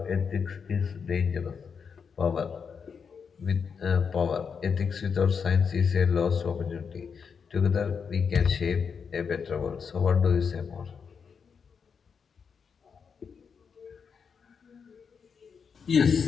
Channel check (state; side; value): quieter; right; 6.2 dB